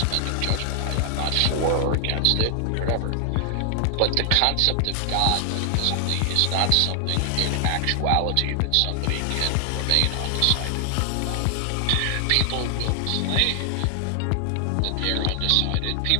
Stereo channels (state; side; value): different; both; correlation 0.00